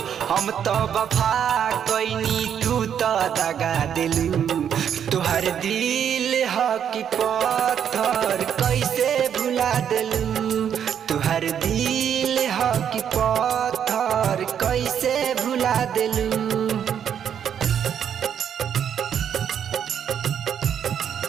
हम तो वफा कैनी तू तो दगा दिलू। तुहर दिल ह कि पत्थर कैसे भुला दिलू। तुहर दिल ह कि पत्थर कैसे भुला दिलू।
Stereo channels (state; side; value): quieter; left; 8.7 dB